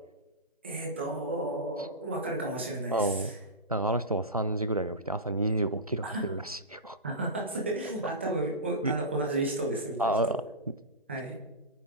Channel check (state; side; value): normal; both; correlation -0.16